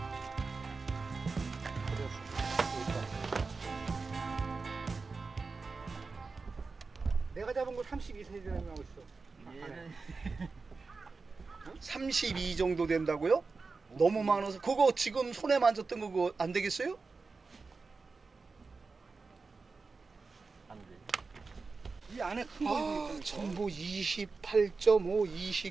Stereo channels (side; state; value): left; quieter; 4.2 dB